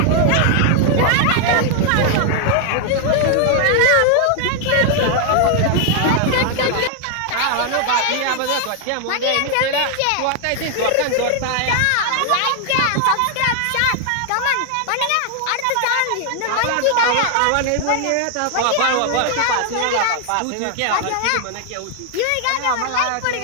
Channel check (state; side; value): different; both; correlation 0.00